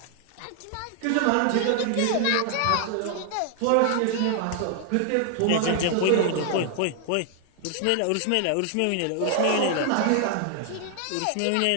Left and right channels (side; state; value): both; different; correlation 0.00